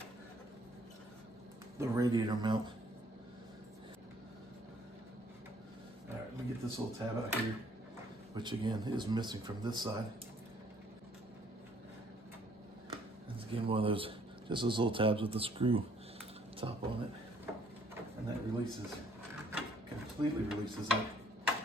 the radiator mount. All right, let me get this little tab out here, which again is missing from this side. It's again one of those, just those little tabs with the screw top on it. And that releases, completely releases that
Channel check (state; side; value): normal; both; correlation 0.63